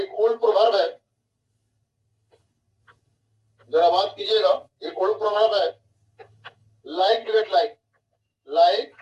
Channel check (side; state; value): both; identical; correlation 1.00